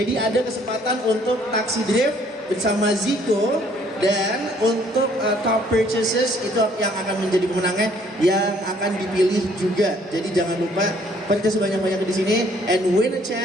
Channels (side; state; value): both; normal; correlation 0.62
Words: ada kesempatan untuk taksi drift bersama Ziko, dan untuk top purchases itu yang akan menjadi pemenangnya yang akan dipilih juga. Jadi jangan lupa purchase banyak-banyak di sini and win a